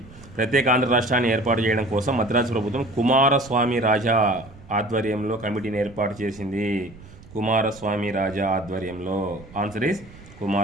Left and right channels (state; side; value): noise; right; rumble, 20 dB below the sound